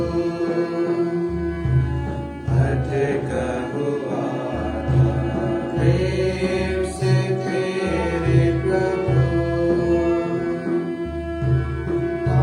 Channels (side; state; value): both; identical; correlation 1.00